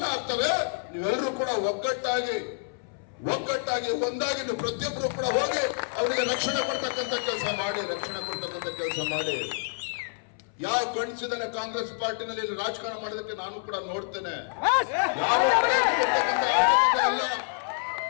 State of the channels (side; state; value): right; silent; 60 dB below the other